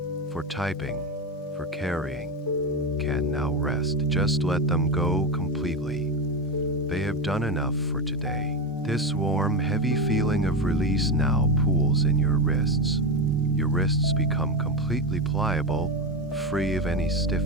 for typing, for carrying, can now rest. Just let them go completely. They have done enough for today. This warm, heavy feeling of release now pools in your wrists. Your wrists become completely pliable, free of any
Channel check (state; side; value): normal; both; correlation 0.15